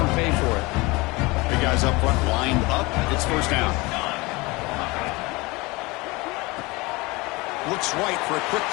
them pay for it. Big guys up front lined up. It's first down. Looks right for a quick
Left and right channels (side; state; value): right; quieter; 23.9 dB